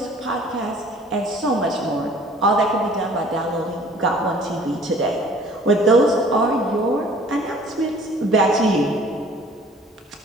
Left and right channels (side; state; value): both; normal; correlation 0.52